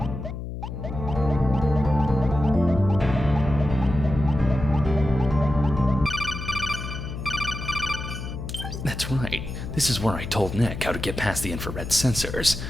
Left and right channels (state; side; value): noise; left; hum, 7 dB below the sound